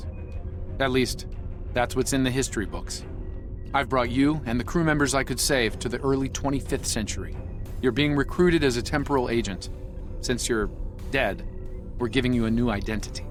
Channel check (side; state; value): both; identical; correlation 1.00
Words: At least, that's what's in the history books. I've brought you and the crew members I could save to the early 25th century. You're being recruited as a temporal agent. Since you're dead, we're giving you a new identity.